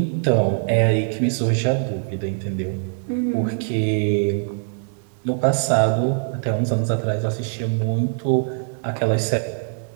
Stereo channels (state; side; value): silent; left; digital silence